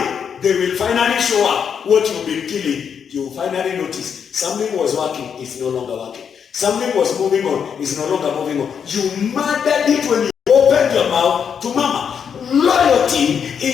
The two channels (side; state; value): right; quieter; 7.3 dB